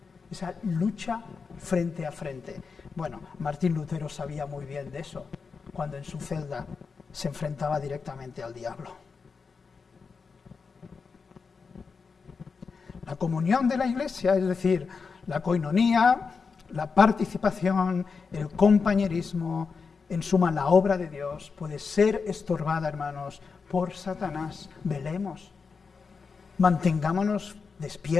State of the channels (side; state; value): right; quieter; 5.1 dB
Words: Esa lucha frente a frente. Bueno, Martín Lutero sabía muy bien de eso, cuando en su celda se enfrentaba directamente al diablo. La comunión de la Iglesia, es decir, la coinonía, la participación, el compañerismo, en suma la obra de Dios, puede ser estorbada, hermanos, por Satanás. Velemos, mantengámonos